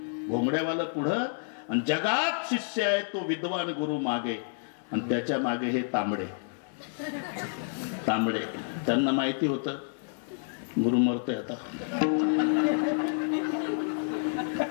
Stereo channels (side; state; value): right; silent; 58 dB below the other